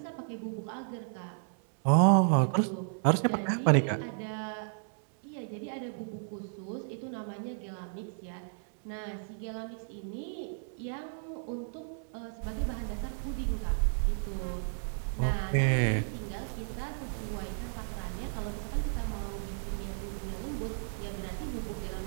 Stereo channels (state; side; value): silent; left; 56 dB below the other